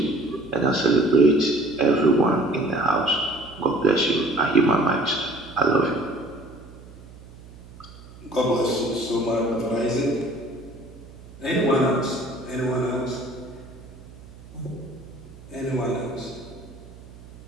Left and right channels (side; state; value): right; noise; hum, 19 dB below the sound